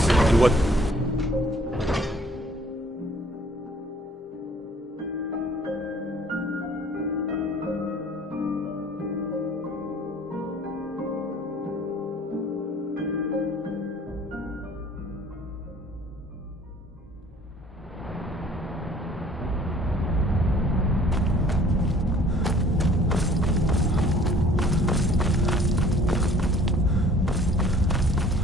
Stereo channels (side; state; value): both; normal; correlation 0.54